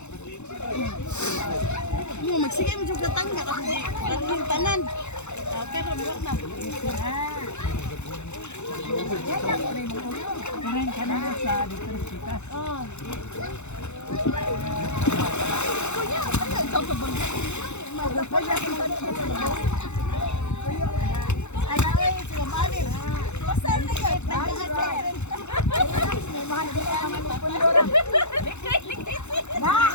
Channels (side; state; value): right; late; 0.82 ms